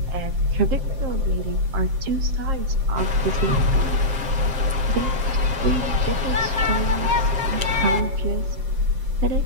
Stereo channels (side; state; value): left; late; 7.5 ms